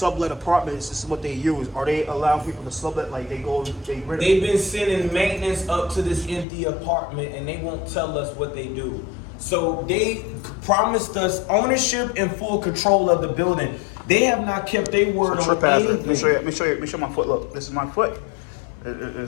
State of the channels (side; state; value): right; drops out; at 6.5 s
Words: apartments, this is what they use. Are they allowing people to sublet? Like they've been sending maintenance up to this empty apartment, and they won't tell us what they do. So they promised us ownership and full control of the building. They have not kept their word on anything. Let me show you my foot. Look, this is my foot.